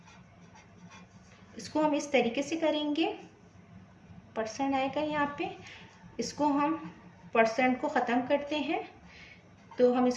इसको हम इस तरीके से करेंगे, परसेंट आएगा यहाँ पे, इसको हम परसेंट को ख़त्म करते हैं तो हम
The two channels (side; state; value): both; identical; correlation 1.00